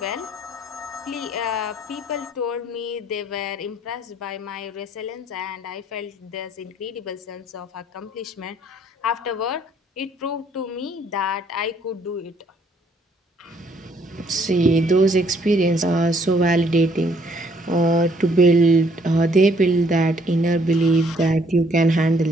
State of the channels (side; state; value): both; normal; correlation 0.65